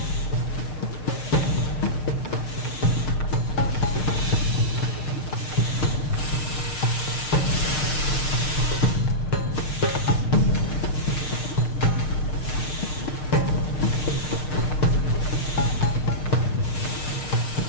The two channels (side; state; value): right; late; 6.6 ms